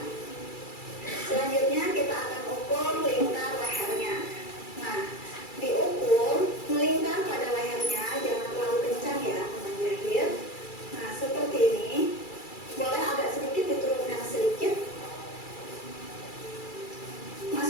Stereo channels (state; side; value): late; right; 2.3 ms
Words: Selanjutnya kita akan ukur lingkar lehernya. Nah, diukur melingkar pada lehernya, jangan terlalu kencang ya teman jahit. Nah, seperti ini. Boleh agak sedikit diturunkan sedikit.